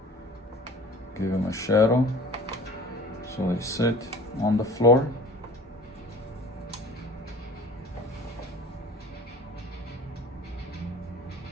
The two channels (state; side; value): normal; both; correlation 0.44